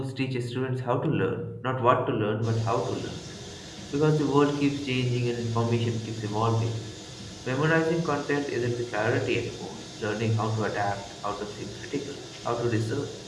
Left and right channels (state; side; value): identical; both; correlation 1.00